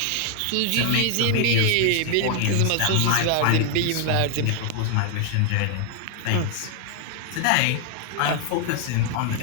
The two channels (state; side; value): different; both; correlation 0.00